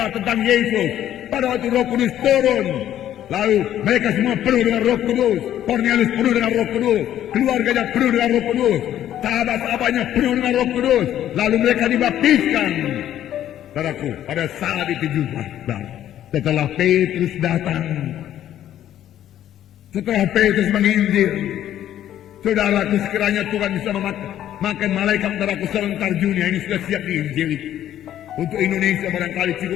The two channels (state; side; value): quieter; right; 11.6 dB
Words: tentang Yesus. Pada waktu Roh Kudus turun, lalu mereka semua penuh dengan Roh Kudus. Cornelius penuh dengan Roh Kudus, keluarganya penuh dengan Roh Kudus, sahabat-sahabatnya penuh dengan Roh Kudus. Lalu mereka dibaptiskan. Saudaraku, pada saat itu juga, setelah Petrus datang, setelah Petrus menginjil, saudaraku, sekiranya Tuhan bisa memakai malaikat, saudaraku, serentar dunia ini sudah siap diinjili. Untuk Indonesia barangkali